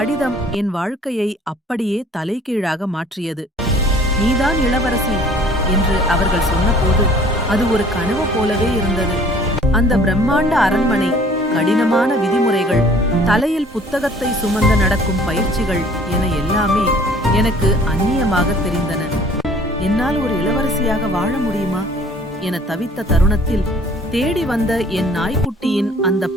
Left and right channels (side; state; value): both; normal; correlation 0.53